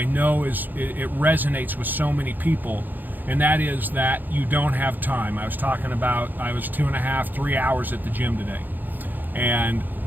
know it resonates with so many people, and that is that you don't have time. I was talking about I was 2.5, 3 hours at the gym today. And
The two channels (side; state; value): left; late; 0.087 ms